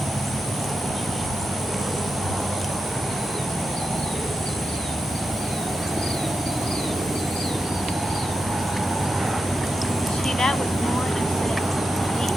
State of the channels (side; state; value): both; normal; correlation 0.88